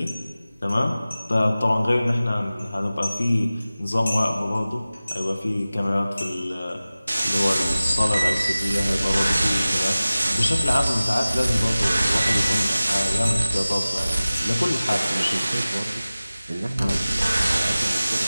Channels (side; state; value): both; inverted; correlation -0.97